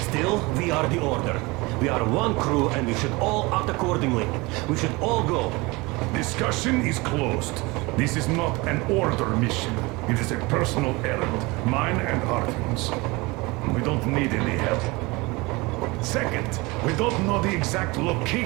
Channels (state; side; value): quieter; left; 24.1 dB